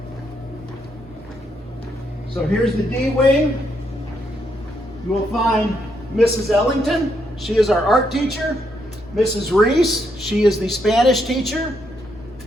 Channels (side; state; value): both; normal; correlation 0.77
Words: So here's the D wing. You will find Mrs. Ellington, she is our art teacher. Mrs. Reese, she is the Spanish teacher.